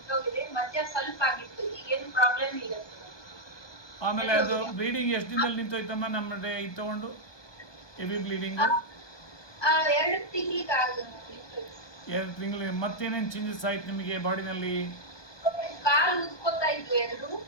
ಮಧ್ಯ ಸ್ವಲ್ಪ ಆಗಿತ್ತು, ಈಗೇನು ಪ್ರಾಬ್ಲಮ್ ಇಲ್ಲ. ಆಮೇಲೆ ಅದು ಬ್ಲೀಡಿಂಗ್ ಎಷ್ಟು ದಿನದಲ್ಲಿ ನಿಂತೋಯ್ತಮ್ಮ? ನಮ್ಮ ಇದು ತಗೊಂಡು ಹೆವಿ ಬ್ಲೀಡಿಂಗು 2 ತಿಂಗಳಿಗೆ ನಿಂತೋಯ್ತು. 2 ತಿಂಗಳು. ಮತ್ತೇನೇನು ಚೇಂಜಸ್ ಆಯ್ತು ನಿಮಗೆ ಬಾಡಿನಲ್ಲಿ? ಕಾಲು ಉದ್ಕೋತಾ ಇದ್ವು 2,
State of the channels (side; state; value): right; late; 1.2 ms